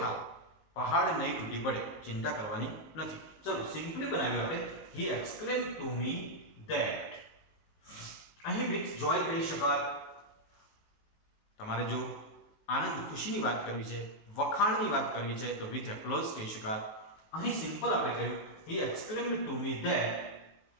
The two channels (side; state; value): right; late; 19 ms